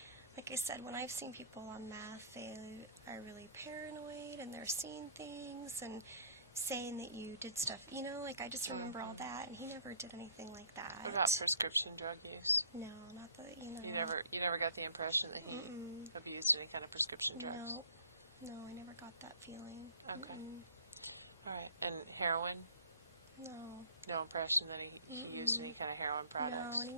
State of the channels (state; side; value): inverted; both; correlation -0.51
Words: like I said, when I've seen people on meth, they are really paranoid, and they're seeing things, and saying that you did stuff, I just remember all that, and he never did anything like that. What about prescription drug use? No, not that, You never got the impression that he abused any kind of prescription drugs? No, I never got that feeling. Okay. All right. And heroin? No. No impression that he used any kind of heroin products? No, and